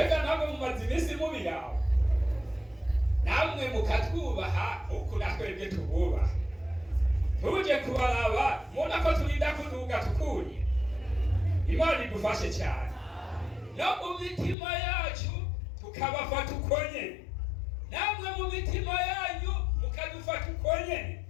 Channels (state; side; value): drops out; right; at 14.6 s